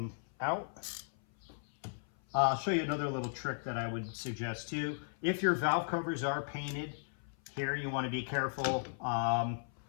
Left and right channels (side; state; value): right; silent; 54 dB below the other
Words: out. I'll show you another little trick that I would suggest too. If your valve covers are painted, here you want to be careful. Let